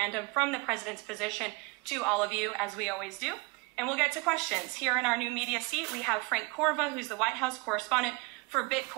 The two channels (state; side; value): quieter; left; 26.6 dB